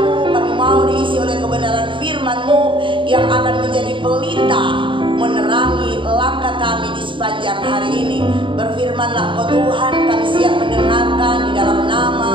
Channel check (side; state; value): left; late; 0.24 ms